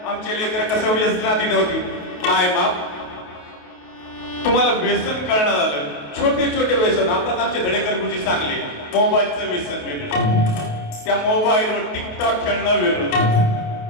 आमचे लेकर कसं व्यसनाधीन होती. माय बाप तुम्हाला व्यसन कळणार झालं. छोटे छोटे व्यसन आताच आमचे धडेकर गुरुजी सांगले, मोबाईलचं व्यसन वेगळं, त्या मोबाईलवर टिकटॉक खेळणं वेगळं,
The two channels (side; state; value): right; late; 28 ms